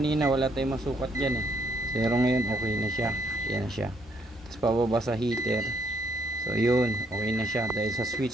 wala tayong masukat dyan eh. Pero ngayon okay na siya. Yan na siya. Tapos pababa sa heater. So yun, okay na siya dahil sa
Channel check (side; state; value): both; normal; correlation 0.71